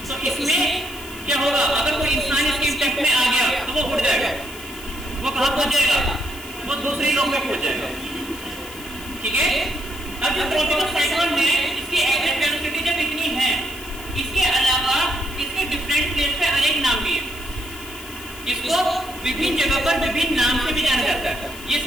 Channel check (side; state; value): left; noise; hiss, 16 dB below the sound